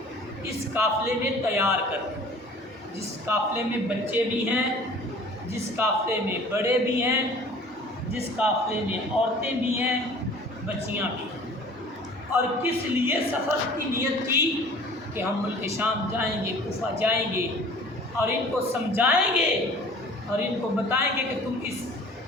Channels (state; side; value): normal; both; correlation 0.47